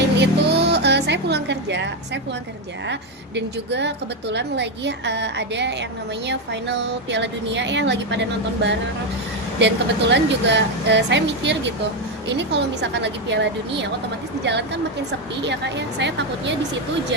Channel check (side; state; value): both; normal; correlation 0.07